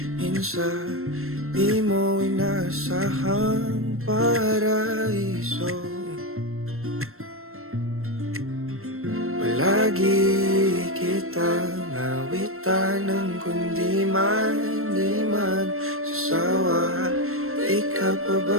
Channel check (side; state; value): left; late; 0.62 ms